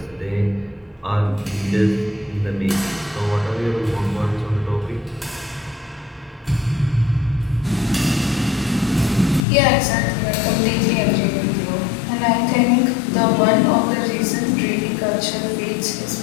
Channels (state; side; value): drops out; right; at 9.4 s